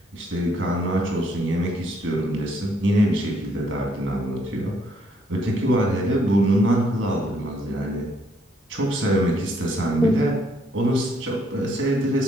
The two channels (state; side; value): normal; both; correlation 0.69